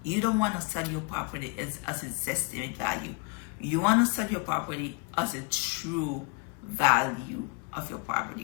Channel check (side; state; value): right; quieter; 30.9 dB